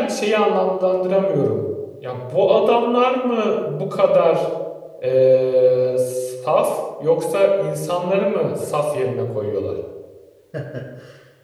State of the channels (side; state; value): both; identical; correlation 1.00